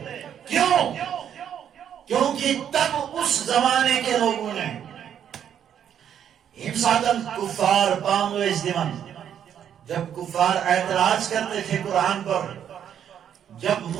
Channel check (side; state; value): left; quieter; 9.2 dB